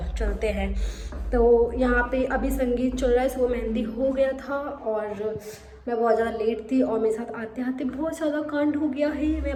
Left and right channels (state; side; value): identical; both; correlation 1.00